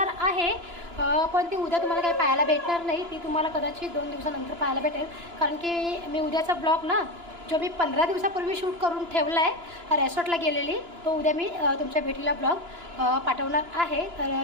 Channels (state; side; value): late; left; 2.9 ms